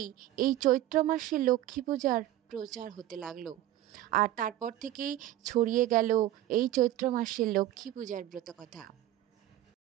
এই চৈত্র মাসে লক্ষ্মী পূজার প্রচার হতে লাগলো। আর তারপর থেকেই ছড়িয়ে গেল এই চৈত্র মাসে লক্ষ্মী পূজার ব্রতকথা।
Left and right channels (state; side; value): quieter; left; 13.9 dB